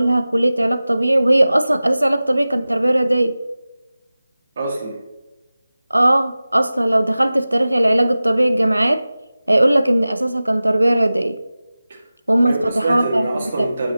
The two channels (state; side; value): inverted; both; correlation -0.96